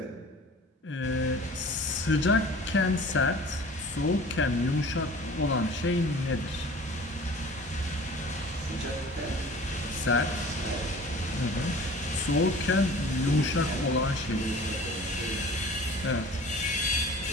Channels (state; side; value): normal; both; correlation 0.44